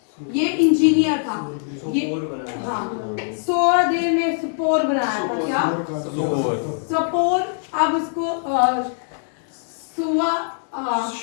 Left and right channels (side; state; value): right; silent; digital silence